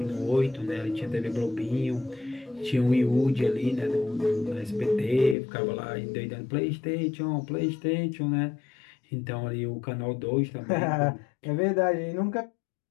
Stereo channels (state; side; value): drops out; right; at 5.4 s